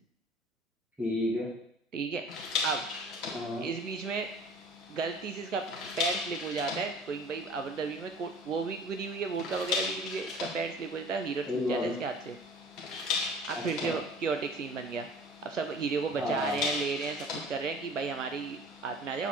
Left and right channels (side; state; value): both; normal; correlation 0.46